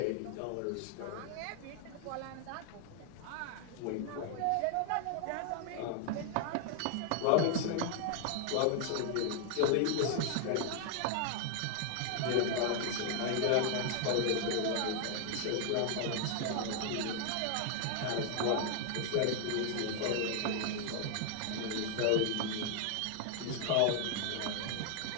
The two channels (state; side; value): different; both; correlation 0.00